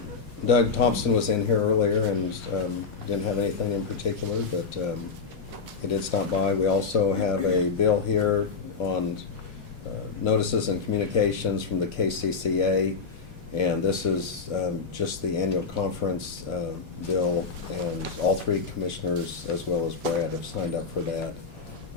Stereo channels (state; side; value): quieter; right; 5.1 dB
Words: Doug Thompson was in here earlier and didn't have anything in particular, but he did stop by. We also have a bill here on notices and communications from the KCCA, and this is just the annual conference bill, and all three commissioners, as well as Brad, have signed up for that.